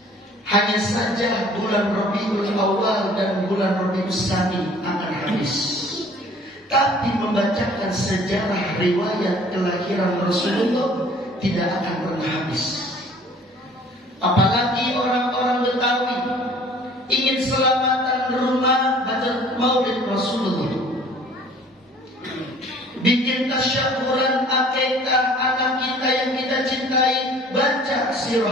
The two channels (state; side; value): normal; both; correlation 0.52